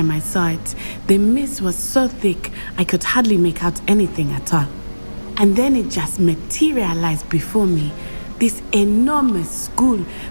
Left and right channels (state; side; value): inverted; both; correlation -1.00